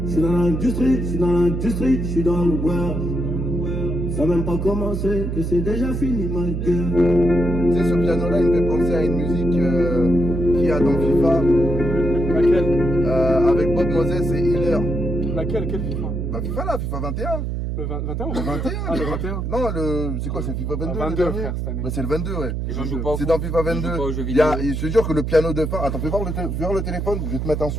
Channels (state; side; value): noise; right; hum, 2 dB below the sound